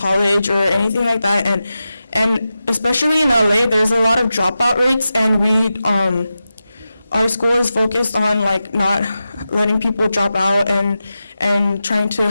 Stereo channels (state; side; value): inverted; both; correlation -0.92